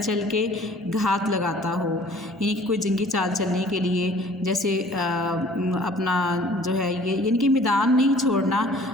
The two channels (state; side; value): normal; both; correlation 0.52